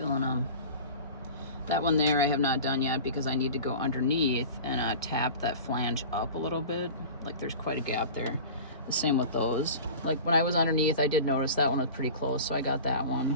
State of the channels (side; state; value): both; inverted; correlation -0.37